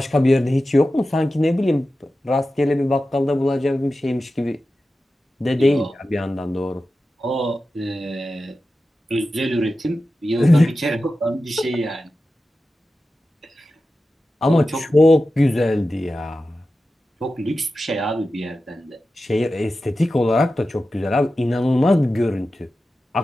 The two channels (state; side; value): normal; both; correlation 0.93